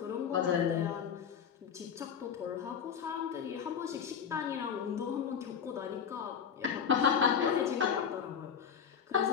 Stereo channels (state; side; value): quieter; right; 7.5 dB